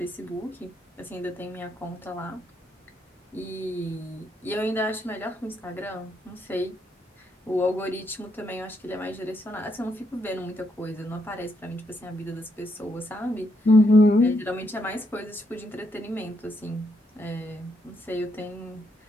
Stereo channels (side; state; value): both; normal; correlation 0.77